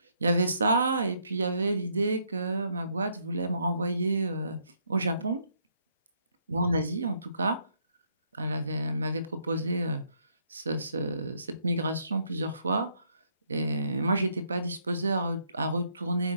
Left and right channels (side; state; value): both; inverted; correlation -0.72